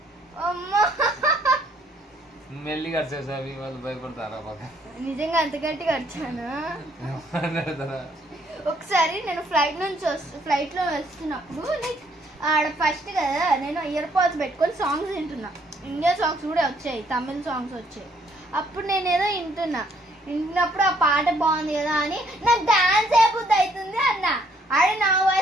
అమ్మా మెల్లిగా అరిచేసావి వాళ్ళు భయపడతారా పక్క? నిజంగా అంత గట్టిగా అరిచాను. ఒకసారి నేను ఫ్లైట్ లో వస్తున్నప్పుడు లైక్ ఆడ ఫస్ట్ కదా నేను ఇయర్ పాడ్స్ పెట్టుకొని సాంగ్స్ వింటున్నా. ఇండియా సాంగ్స్ కూడా వచ్చాయి, తమిళ సాంగ్స్ వచ్చాయి. అప్పుడు నేనేదో వింటున్నప్పుడు ఆ పాట బాగుంది కదా అని నాకు డాన్స్ అయిపోద్ది అవుతుంది అన్న. ఆడ నా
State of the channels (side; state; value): both; normal; correlation 0.67